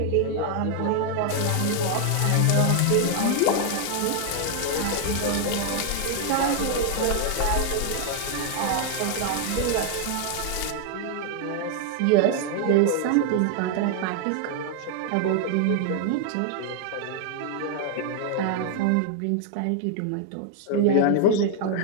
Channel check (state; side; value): different; both; correlation 0.00